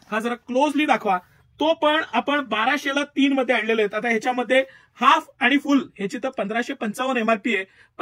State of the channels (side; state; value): both; identical; correlation 1.00